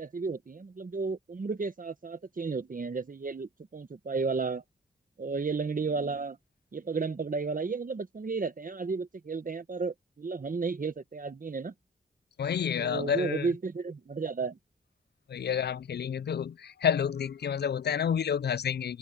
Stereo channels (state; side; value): normal; both; correlation 0.31